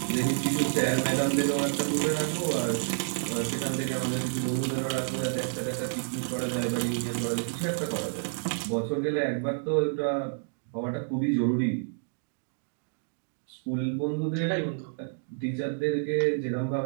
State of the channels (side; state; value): left; silent; digital silence